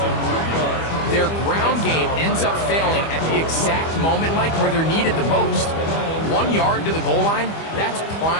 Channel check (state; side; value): late; right; 25 ms